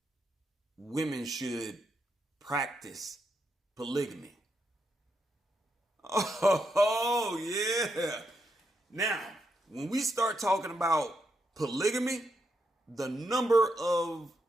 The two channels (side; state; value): both; normal; correlation 0.81